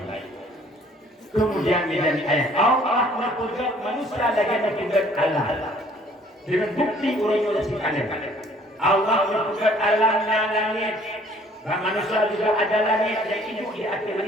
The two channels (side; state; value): both; normal; correlation 0.57